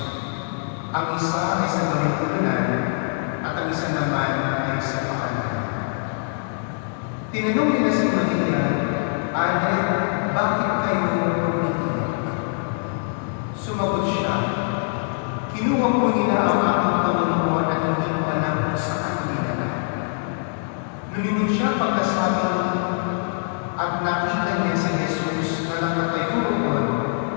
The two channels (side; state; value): right; silent; 62 dB below the other